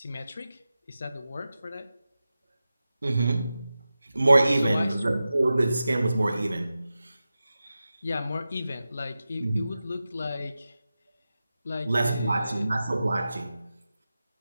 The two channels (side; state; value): both; inverted; correlation -0.93